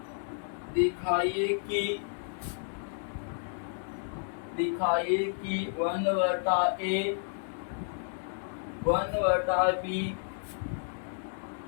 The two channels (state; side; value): silent; right; digital silence